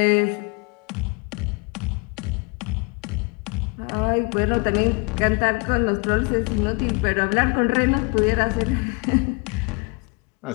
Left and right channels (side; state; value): right; quieter; 31.3 dB